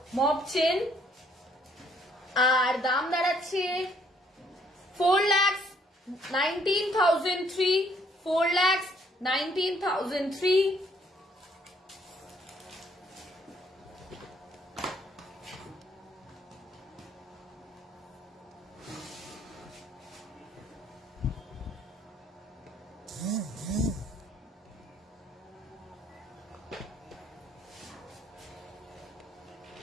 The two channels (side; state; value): both; normal; correlation 0.66